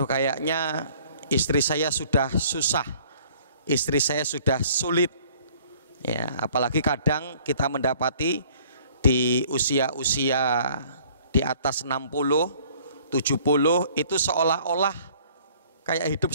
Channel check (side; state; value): both; inverted; correlation -0.56